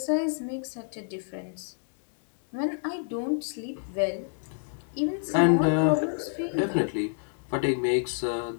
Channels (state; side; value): silent; right; digital silence